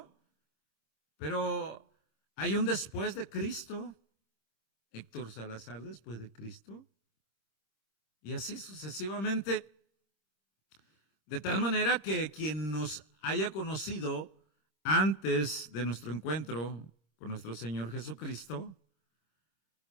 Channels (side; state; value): right; late; 26 ms